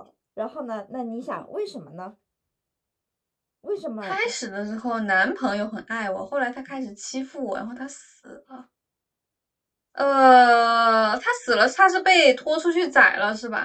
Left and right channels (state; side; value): identical; both; correlation 1.00